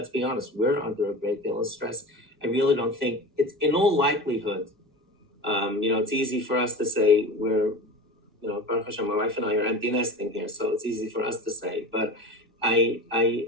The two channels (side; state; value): both; normal; correlation 0.32